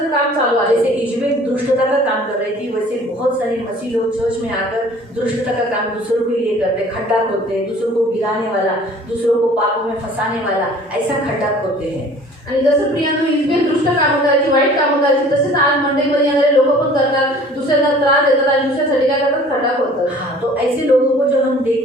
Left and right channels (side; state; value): both; normal; correlation 0.49